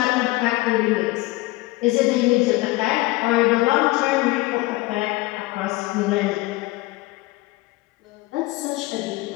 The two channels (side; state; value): right; quieter; 20.2 dB